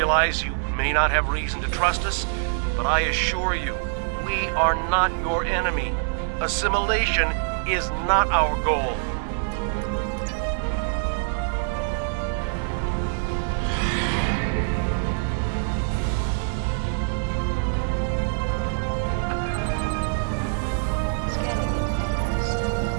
you may not have reason to trust us, but I assure you, we are not your enemy. Assimilation is not our goal.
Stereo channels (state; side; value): silent; left; digital silence